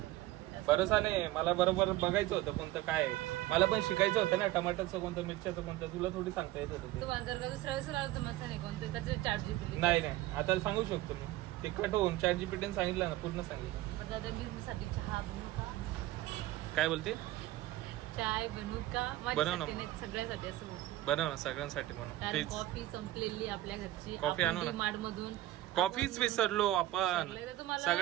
भरोसा नाही, मला बरोबर बघायचं होतं कोणतं काय आहे. मला पण शिकायचं होतं ना, टमाटरचं कोणतं, मिरच्याचं कोणतं, तुला थोडी सांगता येत होतं ते. तुम्हाला जर का दुसऱ्या वेळेस आलं तर मस्त नाही कोणतं त्याचे ChatGPT. नाही आता सांगू शकतो मी, ते कट होऊन ChatGPT सांगितलं ना, पूर्ण सांगितलं. पण दादा मी साठी चहा बनवू का? काय बोलते? चाय बनवू का? बनव ना. माझ्यासाठी नाही, सगळ्यासाठी असं बोलतो. बनव ना, सगळ्यांसाठी बनव कारण प्लीज. कॉफी संपलेली आपल्या घरची. कॉफी आणू ना. मार्ट मधून कॉफीच विसरलो आपण, विसरले तर तुम्हाला-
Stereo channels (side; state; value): left; quieter; 16.1 dB